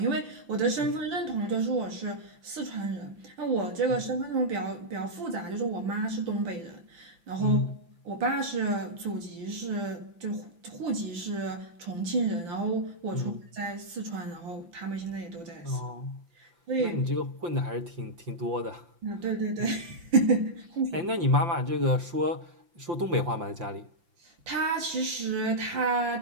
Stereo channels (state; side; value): late; left; 5.9 ms